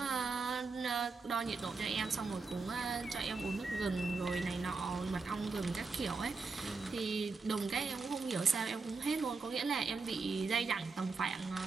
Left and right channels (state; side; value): quieter; left; 4.4 dB